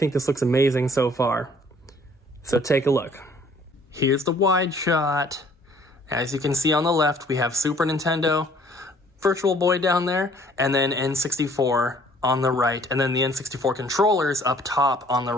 this looks amazing so far. So take a look. Here's the wide shot. As you can see on the left, we have Super Nintendo, Virtual Boy down there, and then N64 on the right, and then the N64 controllers up top on the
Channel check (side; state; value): both; normal; correlation 0.58